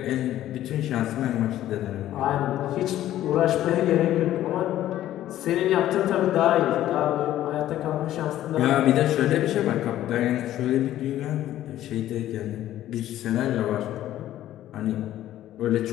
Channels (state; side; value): quieter; right; 13.1 dB